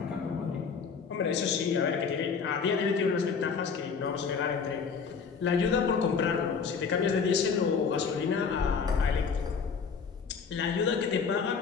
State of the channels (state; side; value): quieter; right; 5.8 dB